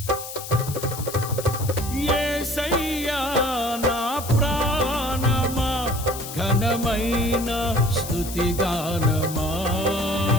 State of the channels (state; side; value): noise; left; hiss, 10 dB below the sound